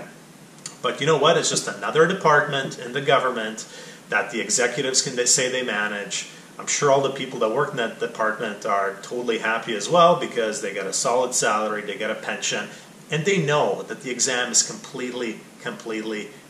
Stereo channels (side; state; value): both; identical; correlation 1.00